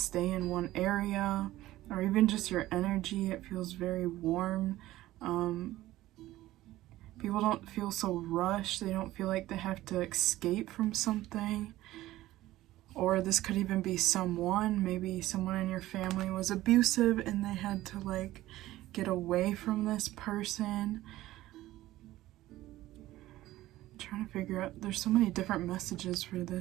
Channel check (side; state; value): left; quieter; 15.9 dB